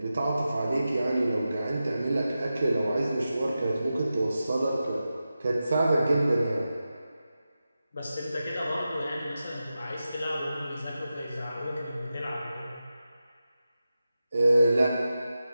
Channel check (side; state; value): both; inverted; correlation -0.92